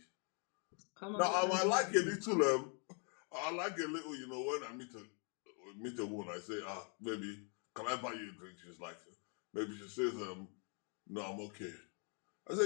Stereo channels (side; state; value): right; quieter; 39.7 dB